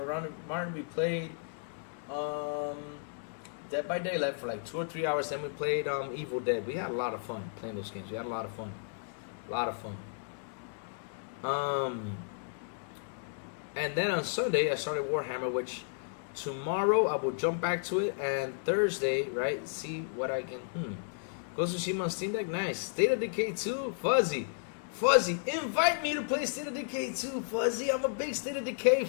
Martin. We played Dead by Daylight for like 2 or 3 hours. Then we played Evil Dead. We had a lot of fun playing those games. We had a lot of fun. A lot of fun. And then on Sunday, I started Warhammer, which tomorrow I will jump back to it. And Thursday, right, see what I can... Ghost of Tsushima on Steam Deck, nice. State of Decay 2, Fuzzy, invite me to play State of Decay 2, Fuzzy. I'm a big State of Decay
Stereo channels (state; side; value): silent; right; digital silence